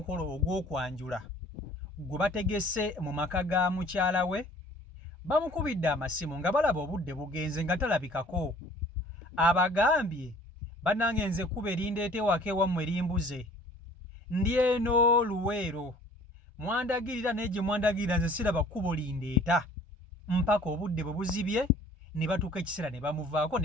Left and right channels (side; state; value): both; normal; correlation 0.51